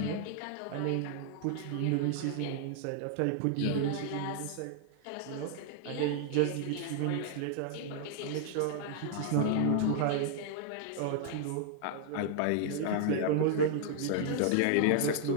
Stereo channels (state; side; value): different; both; correlation 0.00